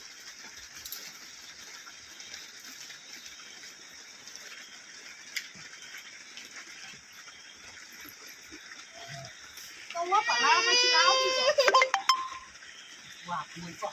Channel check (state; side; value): identical; both; correlation 1.00